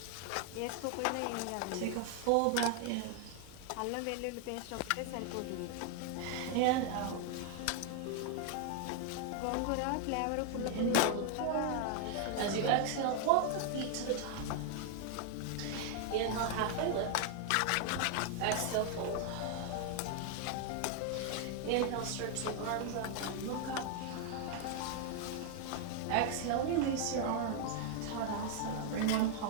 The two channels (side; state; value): both; different; correlation 0.00